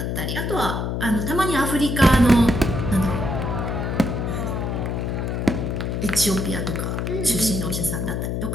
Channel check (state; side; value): noise; left; hum, 1 dB below the sound